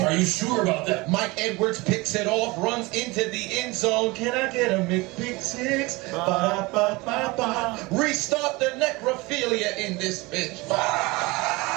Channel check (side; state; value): left; quieter; 23.4 dB